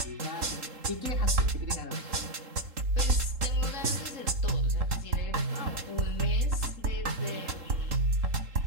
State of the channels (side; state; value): left; late; 3.7 ms